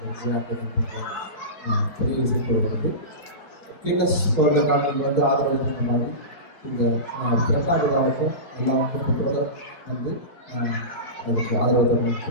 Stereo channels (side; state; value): right; late; 4.7 ms